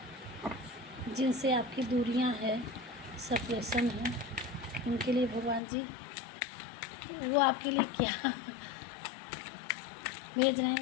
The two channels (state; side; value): drops out; right; at 5.6 s